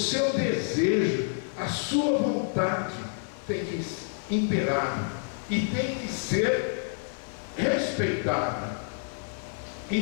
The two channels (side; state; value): right; silent; digital silence